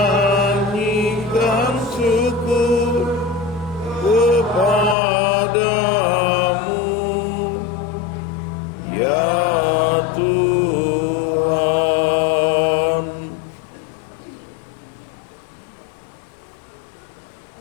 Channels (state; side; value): drops out; right; at 5.0 s